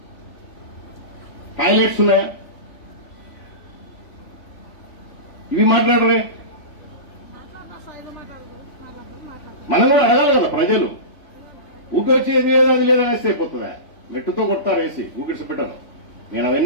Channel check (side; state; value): right; late; 3.5 ms